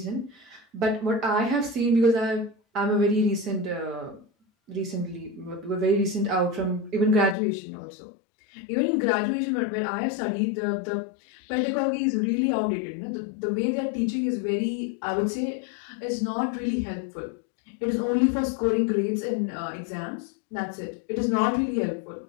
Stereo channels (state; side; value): drops out; right; at 7.4 s